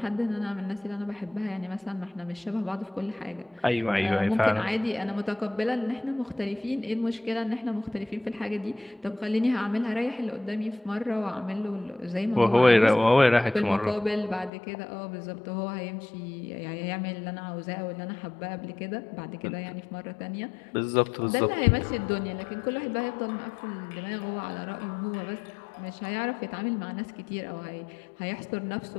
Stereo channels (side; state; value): right; drops out; at 14.5 s